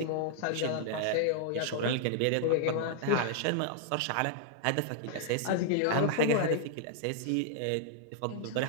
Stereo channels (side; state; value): both; different; correlation -0.01